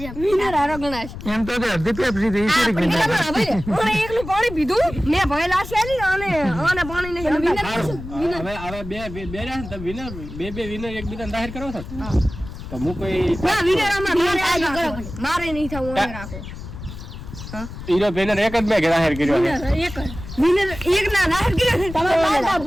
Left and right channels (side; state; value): left; noise; rumble, 11 dB below the sound